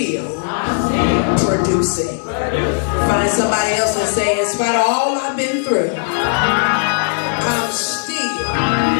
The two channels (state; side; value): silent; right; digital silence